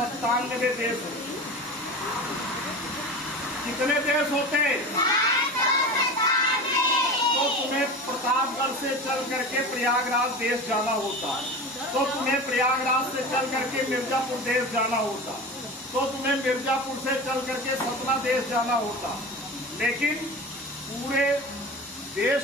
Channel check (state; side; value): normal; both; correlation 0.30